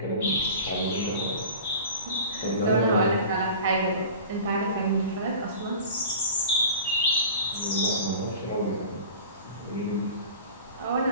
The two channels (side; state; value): both; inverted; correlation -0.38